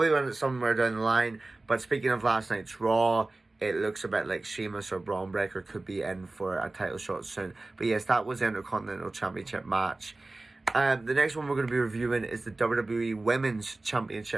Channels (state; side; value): quieter; left; 3.1 dB